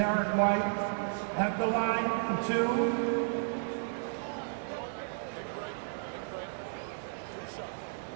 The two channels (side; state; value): left; silent; digital silence